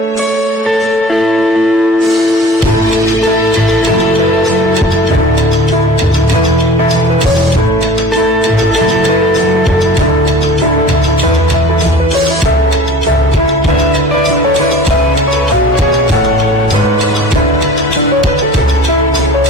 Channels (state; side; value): normal; both; correlation 0.43